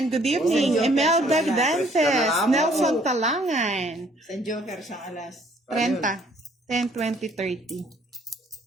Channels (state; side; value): normal; both; correlation 0.61